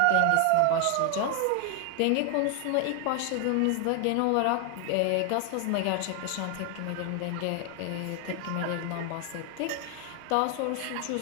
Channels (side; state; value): both; different; correlation 0.00